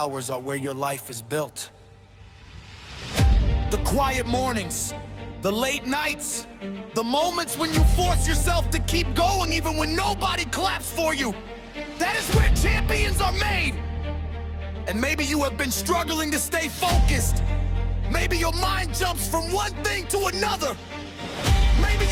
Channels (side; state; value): both; identical; correlation 1.00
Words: are where your life is built. The quiet mornings, the late nights, the moments when you force yourself to keep going even when nobody claps for you. That is where champions are made. And maybe you have been struggling to stay focused. Maybe your mind jumps from one thing to another. Maybe